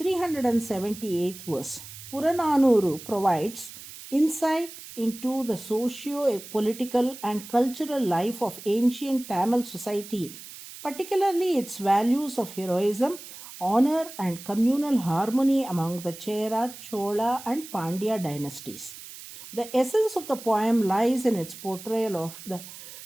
verse. Purananuru provides insight into the socio-political and cultural life of ancient Tamil society, particularly its values of heroism, honor, and communal harmony among the Chera, Chola, and Pandya dynasties. The essence of the poem lies in its portrayal of the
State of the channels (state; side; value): noise; right; hiss, 15 dB below the sound